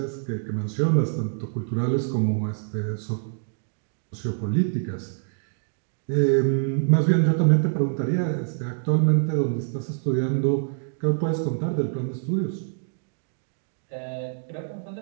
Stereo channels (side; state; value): left; silent; digital silence